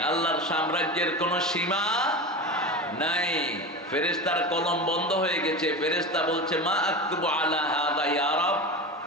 আল্লাহর সাম্রাজ্যের কোনো সীমা নাই। ফেরেশতার কলম বন্ধ হয়ে গেছে। ফেরেশতা বলছে, মা আকতুবু আলা হাযা ইয়া রাব,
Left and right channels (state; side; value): normal; both; correlation 0.26